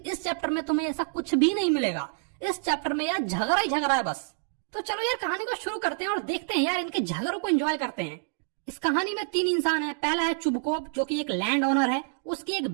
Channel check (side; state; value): left; silent; digital silence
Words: इस चैप्टर में तुम्हें ऐसा कुछ भी नहीं मिलेगा। इस चैप्टर में यार झगड़ा ही झगड़ा है बस। तो चलो यार कहानी को शुरू करते हैं और देखते हैं यार इनके झगड़ों को एंजॉय करते हैं। इस कहानी में 3 इंसान हैं। पहला है चुबकोप, जो कि एक लैंड ओनर है। उसकी एक